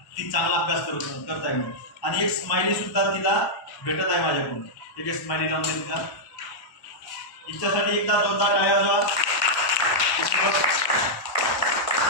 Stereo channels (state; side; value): late; right; 1.1 ms